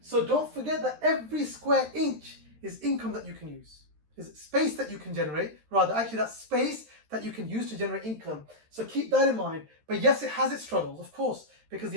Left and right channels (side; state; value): left; late; 13 ms